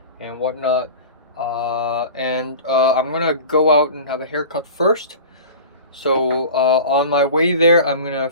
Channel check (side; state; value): both; inverted; correlation -0.37